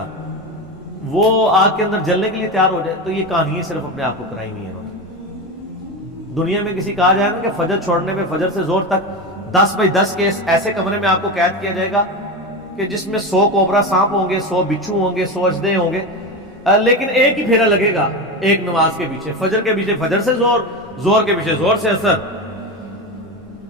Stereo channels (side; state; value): both; normal; correlation 0.20